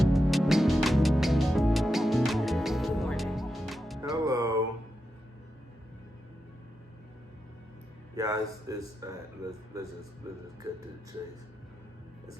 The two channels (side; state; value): both; normal; correlation 0.88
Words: Hello. Yeah, let's just cut to the chase. It's